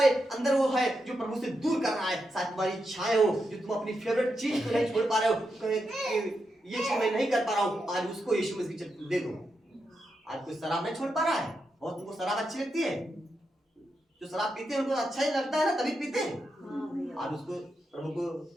अंदर वो है जो प्रभु से दूर कर रहा है, शायद तुम्हारी इच्छाएं हो, जो तुम अपनी फेवरेट चीज को नहीं छोड़ पा रहे हो, ये चीज मैं नहीं कर पा रहा हूँ, आज उसको यीशु मसीह दे दो। आज कोई शराब नहीं छोड़ पा रहा है, और तुमको शराब अच्छी लगती है, जो शराब पीते हैं उनको अच्छा ही लगता है ना, तभी पीते हैं। आज उसको प्रभु को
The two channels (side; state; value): both; normal; correlation 0.85